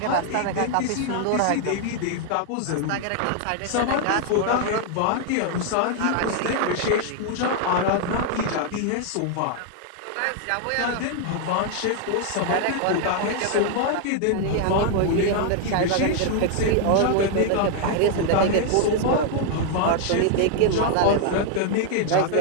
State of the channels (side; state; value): both; different; correlation 0.00